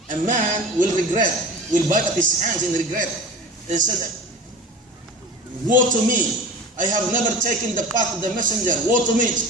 a man will regret, will bite up his hands in regret, and said, "Woe to me! I have never taken the path of the messenger. Woe to me!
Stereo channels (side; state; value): both; normal; correlation 0.35